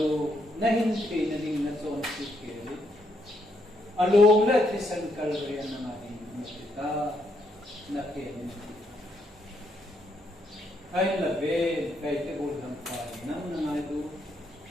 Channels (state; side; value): normal; both; correlation 0.76